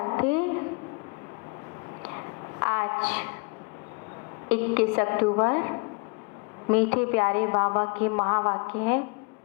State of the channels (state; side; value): quieter; right; 33.4 dB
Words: आज 21 अक्टूबर मीठे प्यारे बाबा के महावाक्य है